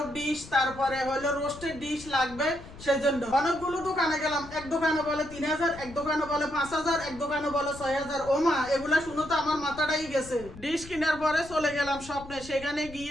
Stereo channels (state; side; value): noise; left; rumble, 17 dB below the sound